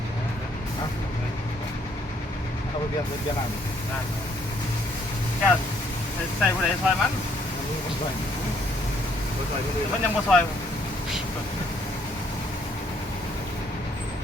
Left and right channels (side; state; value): both; normal; correlation 0.67